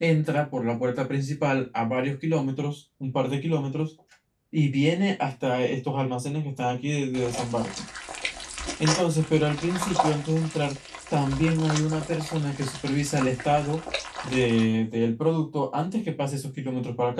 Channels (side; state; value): both; identical; correlation 1.00